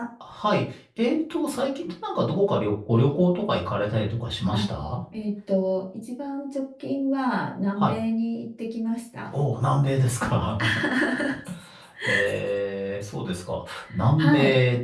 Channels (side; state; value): both; identical; correlation 1.00